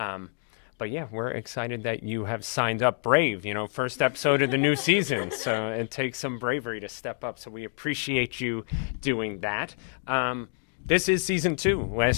But yeah, we're excited that you have signed up brave, first episode of the new season. So it takes some bravery to step up. So we appreciate you doing that. This is season 2.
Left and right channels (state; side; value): silent; right; digital silence